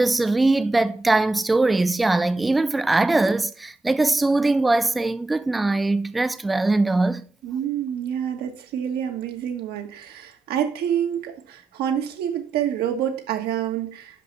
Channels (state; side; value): quieter; left; 3.3 dB